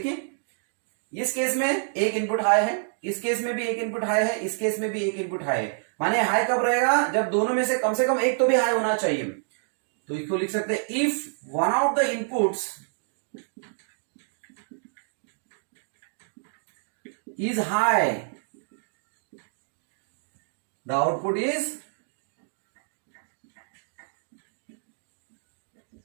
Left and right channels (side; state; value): left; silent; digital silence